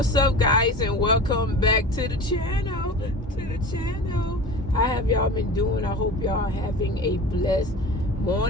up, guys, and welcome back to the channel. How have y'all been doing? I hope y'all having a blessed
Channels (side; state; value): both; normal; correlation 0.35